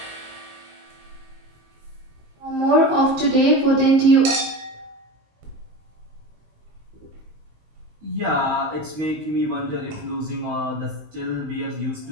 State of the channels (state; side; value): late; left; 19 ms